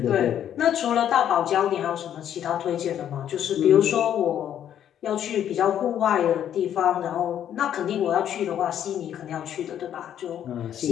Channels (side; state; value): right; quieter; 10.1 dB